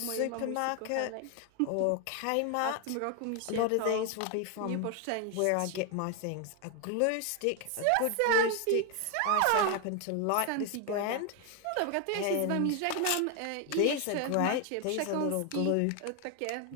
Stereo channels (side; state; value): both; different; correlation 0.01